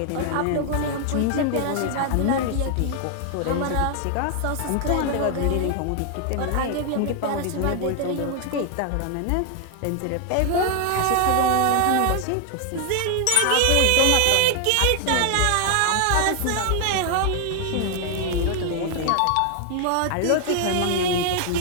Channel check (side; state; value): both; different; correlation 0.00